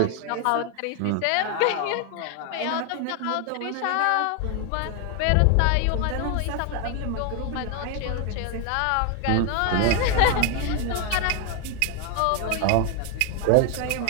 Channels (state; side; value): different; both; correlation 0.01